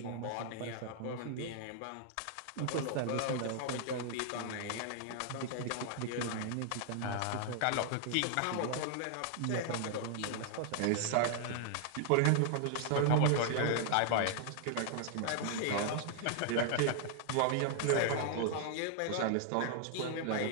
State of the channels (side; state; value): both; different; correlation 0.00